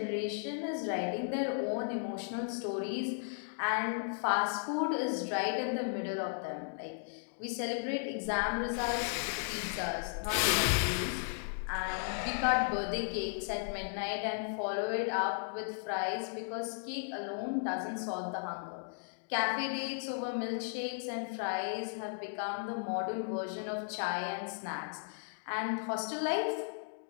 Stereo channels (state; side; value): silent; right; digital silence